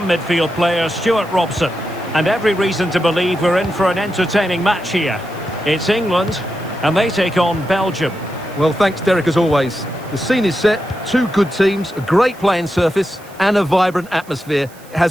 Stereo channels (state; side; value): noise; right; hiss, 24 dB below the sound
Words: midfield player Stuart Robson. And every reason to believe we're in for an entertaining match here. It's England, and they take on Belgium. Well, thanks, Derek, as always. The scene is set, two good teams, a great playing surface, and a vibrant atmosphere. It